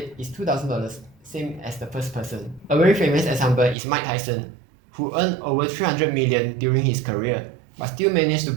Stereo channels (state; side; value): drops out; left; at 3.8 s